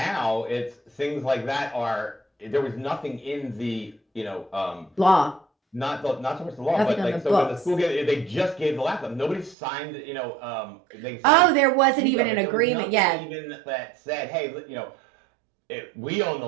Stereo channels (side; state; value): left; drops out; at 9.6 s